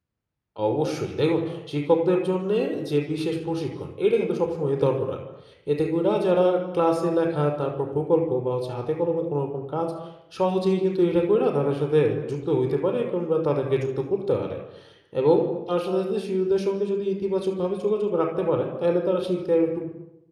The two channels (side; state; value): both; identical; correlation 1.00